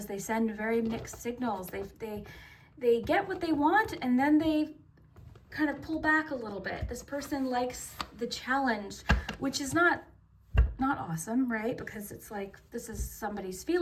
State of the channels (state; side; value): identical; both; correlation 1.00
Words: they send very mixed signals. They get what they want, and then they kind of pull back a little bit. This person likes the challenge, which is not awesome, right? Because it's like, this is somebody's